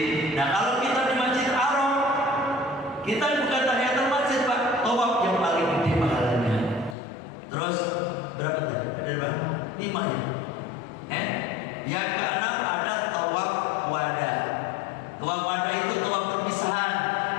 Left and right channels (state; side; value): drops out; right; at 7.0 s